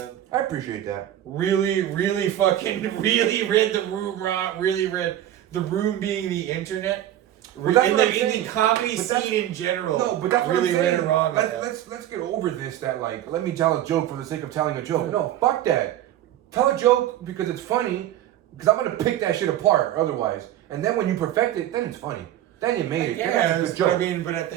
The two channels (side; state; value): left; quieter; 12.4 dB